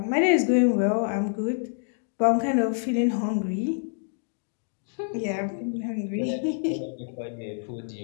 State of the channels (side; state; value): right; silent; digital silence